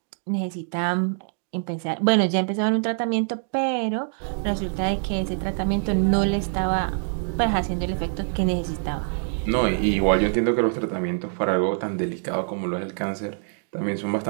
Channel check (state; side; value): silent; left; digital silence